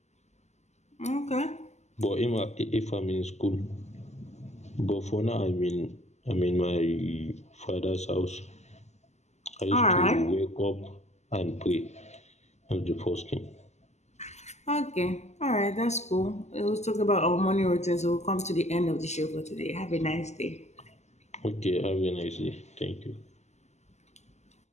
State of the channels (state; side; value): late; right; 0.33 ms